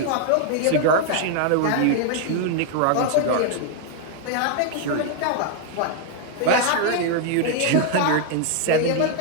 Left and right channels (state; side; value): different; both; correlation 0.00